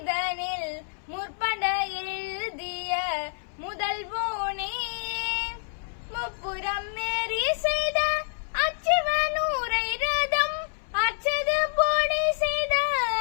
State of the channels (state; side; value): silent; right; 60 dB below the other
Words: முற்பட எழுதிய முதல்வோனே முப்புறம் மேறி செய்த அச்சிவனூரை ரதம் அச்சது போடி செய்த